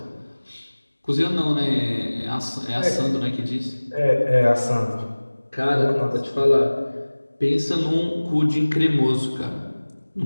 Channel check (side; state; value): both; inverted; correlation -1.00